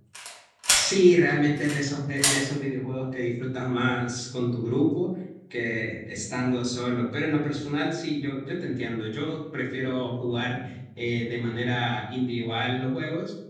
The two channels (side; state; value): both; identical; correlation 1.00